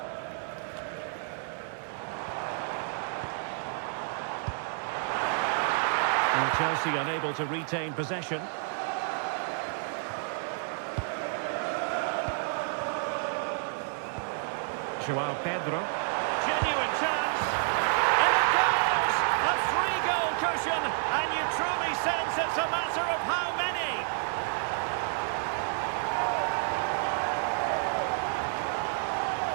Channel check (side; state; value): left; silent; 58 dB below the other